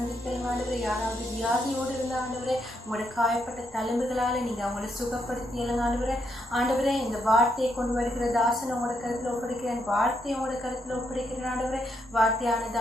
ஆண்டவரே. யாராவது வியாதியோடு இருந்தால் ஆண்டவரே, உங்களோட காயப்பட்ட தழும்புகளால் நீங்கள் அவங்கள சுகப்படுத்தியலுங்க ஆண்டவரே. ஆண்டவரே, இந்த வார்த்தையை கொண்டு வருகிற தாசன் உங்களோட கருத்தில் ஒப்படைக்கிறேன். வார்த்தையோட கருத்தில் ஒப்படைக்கிறேன் ஆண்டவரே. வார்த்தையானது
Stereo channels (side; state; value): both; normal; correlation 0.78